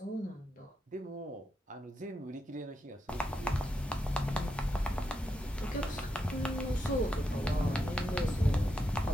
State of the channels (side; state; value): both; normal; correlation 0.84